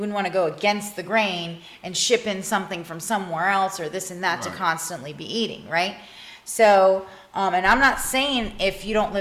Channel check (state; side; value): identical; both; correlation 1.00